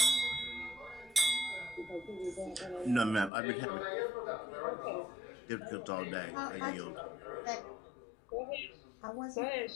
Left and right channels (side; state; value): right; drops out; at 3.3 s